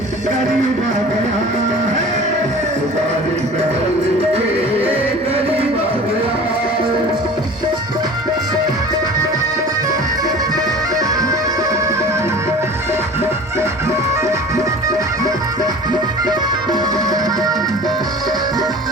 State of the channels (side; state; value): both; normal; correlation 0.41